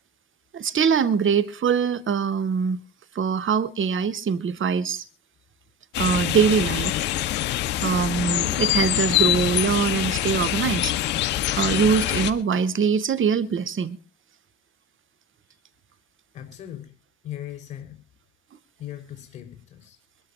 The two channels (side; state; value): both; normal; correlation 0.30